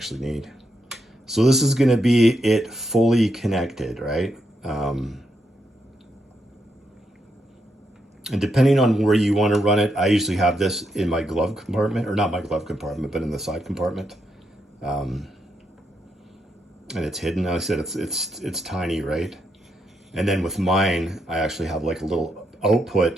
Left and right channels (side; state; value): both; normal; correlation 0.81